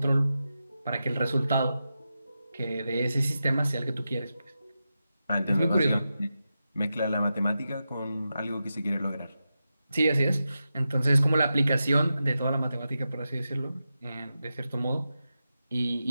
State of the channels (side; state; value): both; inverted; correlation -0.90